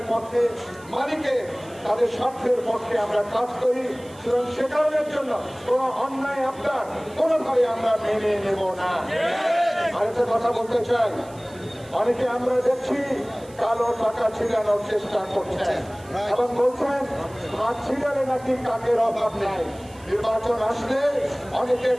পক্ষে, মালিকের তাদের স্বার্থের পক্ষে আমরা কাজ করি, সুতরাং সে কারণের জন্য কোন অন্যায় আপনার কোনোভাবে আমরা মেনে নেব না। আরেকটা কথা বলতে চাই, অনেকে আমরা দেখছি কালো টাকা ছিড়ানোর চেষ্টা করছেন এবং বলছেন হাত ছিড়ালে নাকি কাকের অভাব নাই। নির্বাচন আসলে অনেকে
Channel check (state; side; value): noise; right; hiss, 24 dB below the sound